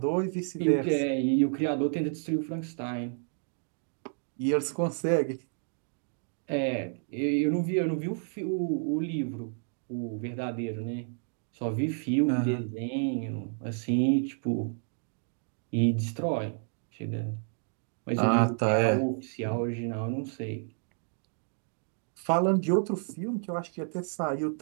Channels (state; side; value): silent; left; 57 dB below the other